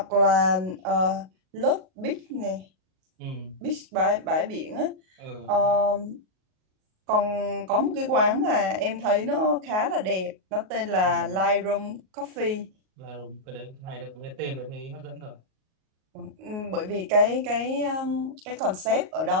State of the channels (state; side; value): late; left; 38 ms